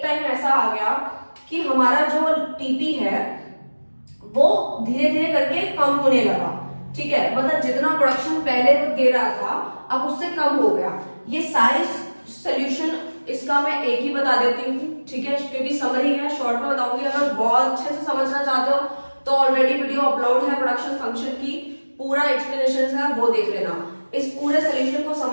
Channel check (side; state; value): both; inverted; correlation -1.00